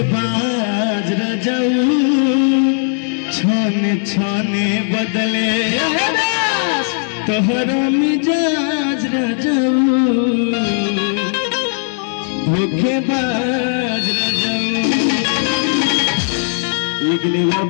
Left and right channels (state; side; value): silent; right; 67 dB below the other